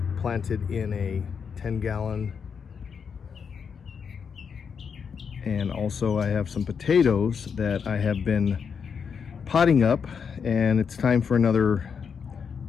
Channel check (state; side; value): quieter; right; 6.5 dB